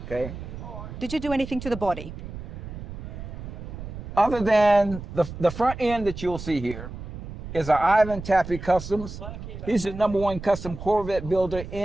okay? Did you do anything to the body? Other than the front end that you'll see here is our Ivan Tappy Customs. He's the #1 custom Corvette builder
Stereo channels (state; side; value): noise; right; rumble, 10 dB below the sound